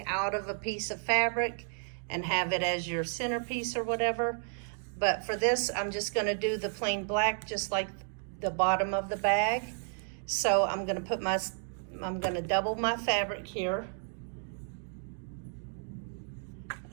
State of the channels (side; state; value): left; silent; 56 dB below the other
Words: out of a piece of fabric and have it as your centerpiece or whatever. But for this, I'm just going to do the plain black, just like the bottom of the bag. So I'm going to double my fabric here,